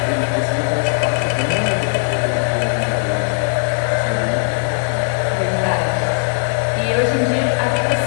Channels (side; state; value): right; silent; 67 dB below the other